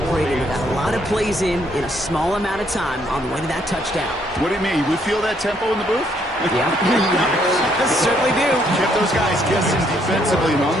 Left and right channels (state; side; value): normal; both; correlation 0.70